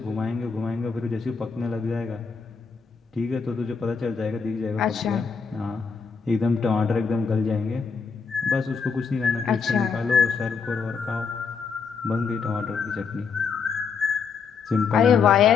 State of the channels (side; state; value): right; quieter; 5.6 dB